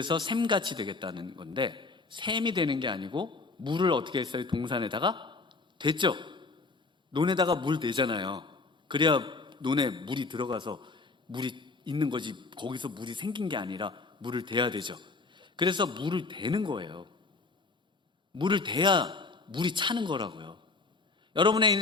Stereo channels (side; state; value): right; quieter; 3.9 dB